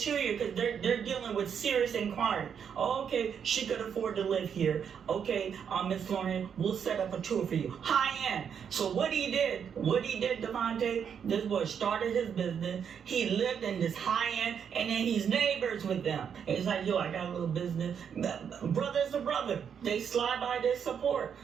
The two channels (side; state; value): left; quieter; 7.6 dB